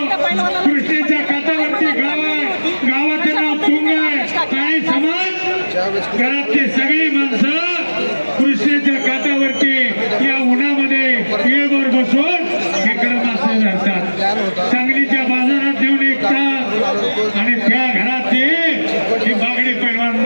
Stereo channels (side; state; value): both; inverted; correlation -1.00